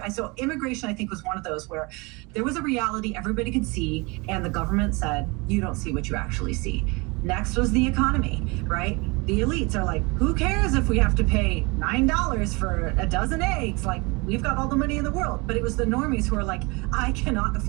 So immigration, I think, was one of those where there was a reality everybody could see, and the government said, you don't see what you actually see. Next was the economy, right? The elites are like, who cares if we have to pay $9 for a dozen eggs? Like, we've got all the money in the world. But it was the normies who are like, I cannot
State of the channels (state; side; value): quieter; left; 27.2 dB